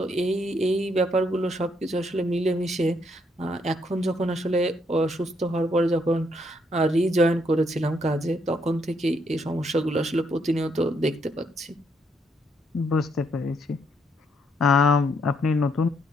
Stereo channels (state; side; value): normal; both; correlation 0.73